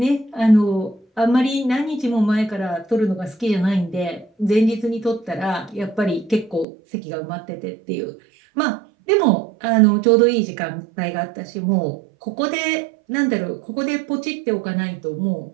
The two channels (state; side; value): drops out; left; at 6.7 s